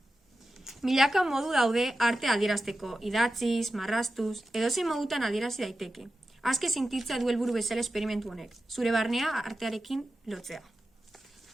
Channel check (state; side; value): normal; both; correlation 0.92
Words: Milaka modu daude arte adierazteko, idatziz, marrastuz, edozein modutan adierazi daiteke. Azke sintitza du helburu bezala esperimentu honek, zure barnea artearekin lotzea.